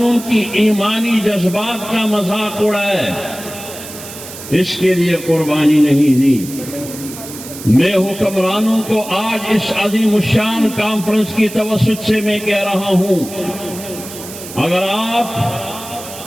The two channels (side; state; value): right; noise; hiss, 13 dB below the sound